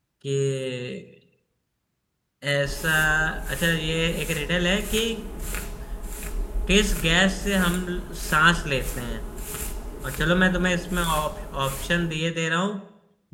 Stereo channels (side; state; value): both; identical; correlation 1.00